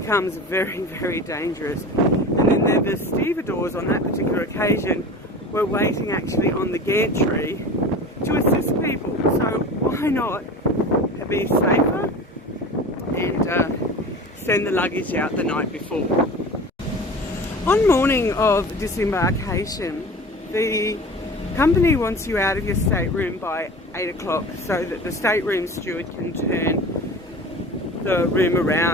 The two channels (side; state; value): both; normal; correlation 0.35